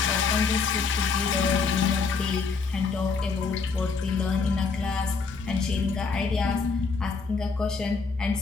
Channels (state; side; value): quieter; right; 4.8 dB